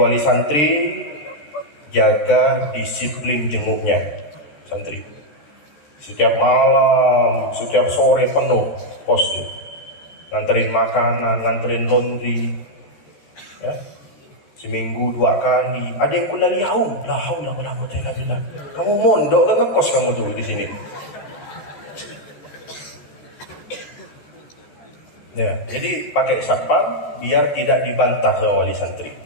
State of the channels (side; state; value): right; late; 14 ms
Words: santri jaga disiplin jenguknya santri. Setiap malam, setiap sore penuh pos. Nganterin makanan, nganterin laundry. Ya. Seminggu 2 kali. Ada yang kulaliau. La haula wala quwwata illa billah. Kamu mondok ke ngekos kamu tuh di sini. Ya, jadi pakai satpam biar tidak dibantah sama wali santri.